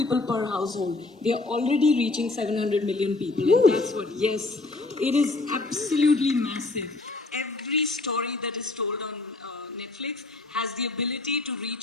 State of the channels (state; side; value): quieter; right; 3.2 dB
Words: per household, they are already reaching 700 million people. And that's what, yes, it is absolutely massive. Every story that is told on Netflix has the ability to